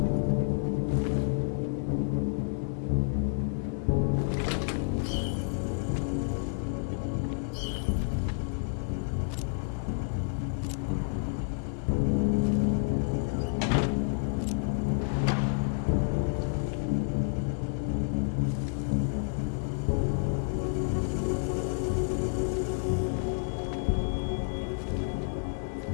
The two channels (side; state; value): right; silent; digital silence